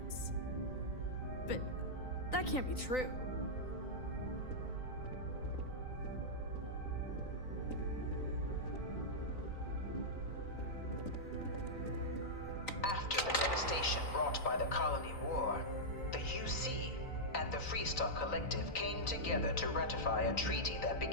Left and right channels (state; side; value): late; right; 3.9 ms